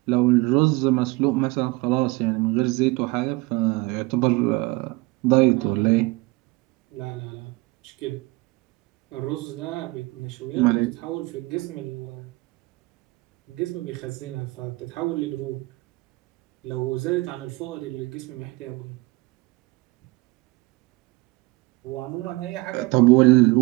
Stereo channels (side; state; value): left; quieter; 23.2 dB